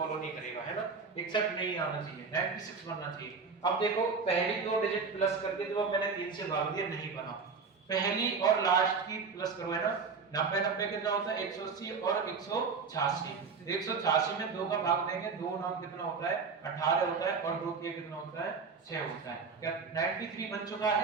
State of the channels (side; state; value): left; quieter; 5.0 dB